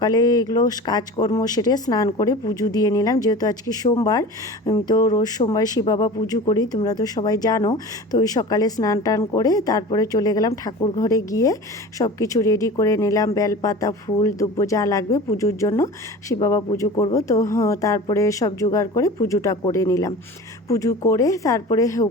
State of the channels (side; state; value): both; normal; correlation 0.36